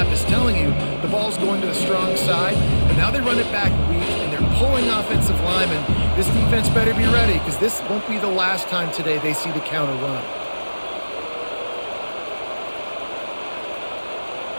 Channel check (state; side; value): inverted; both; correlation -1.00